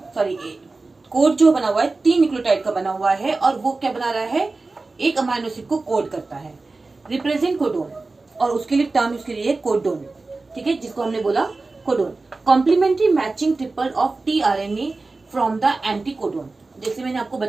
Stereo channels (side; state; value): left; quieter; 3.5 dB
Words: सॉरी कोड जो बना हुआ है 3 न्यूक्लियोटाइड का बना हुआ है, और वो क्या बना रहा है? एक अमाइनो एसिड को कोड करता है। रिप्रेजेंट कोडोन, और उसके लिए टर्म उसके लिए कोडोन। ठीक है, जिसको हमने बोला codon. Complementary matching triple of tRNA from the anticodon. जैसे मैंने आपको